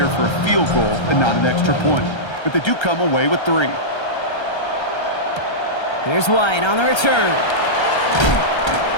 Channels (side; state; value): right; late; 1.3 ms